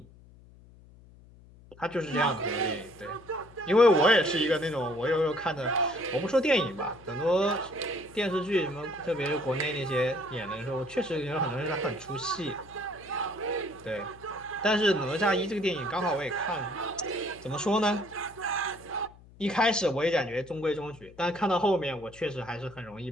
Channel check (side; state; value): left; noise; hum, 23 dB below the sound